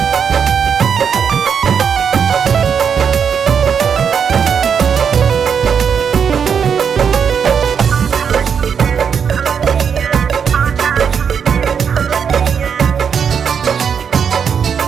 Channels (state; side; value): quieter; left; 7.1 dB